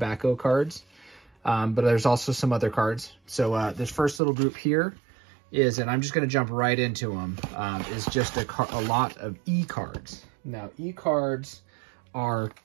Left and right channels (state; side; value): drops out; left; at 4.2 s